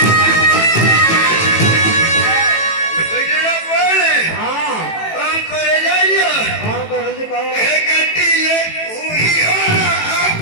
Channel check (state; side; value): late; right; 18 ms